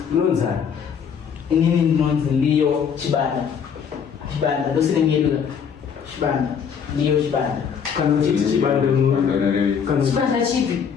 unonzani inini ndinonzi Liyo Chibanda ndosinenyedula Chibanda Liyo Chibanda kana uchiti chibanda Chibanda chipi?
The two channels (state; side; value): quieter; right; 7.1 dB